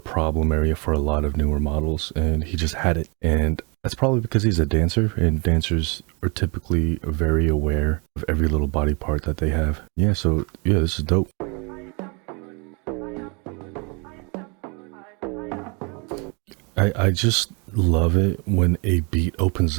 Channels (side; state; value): left; quieter; 32.9 dB